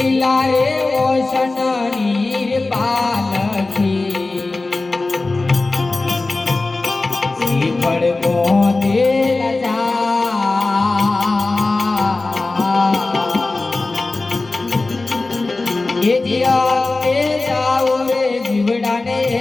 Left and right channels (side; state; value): right; quieter; 3.3 dB